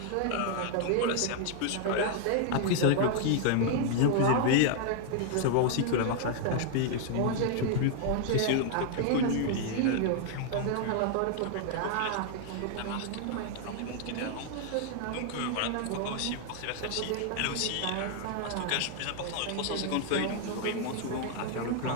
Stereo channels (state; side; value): different; both; correlation 0.00